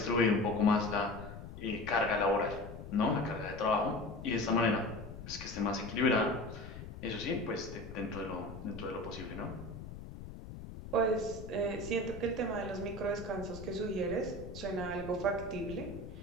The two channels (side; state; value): left; noise; rumble, 11 dB below the sound